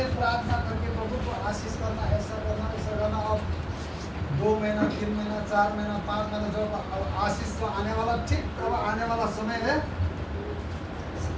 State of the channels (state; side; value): identical; both; correlation 1.00